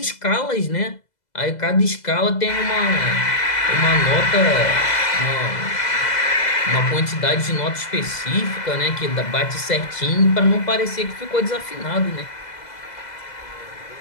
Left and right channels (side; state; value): right; late; 2.0 ms